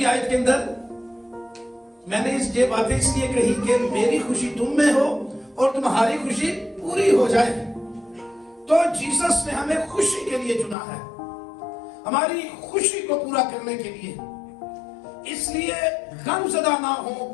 आयत के अंदर, मैंने ये बातें इसलिए कही कि मेरी खुशी तुम में हो और तुम्हारी खुशी पूरी हो जाए। तो जीसस ने हमें खुशी के लिए चुना है, हमारी खुशी को पूरा करने के लिए। इसलिए गमज़दा ना हो,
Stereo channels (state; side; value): drops out; right; at 10.8 s